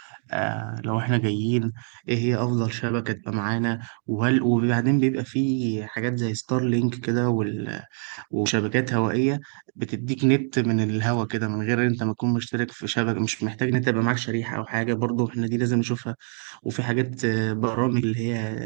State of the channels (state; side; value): silent; left; 55 dB below the other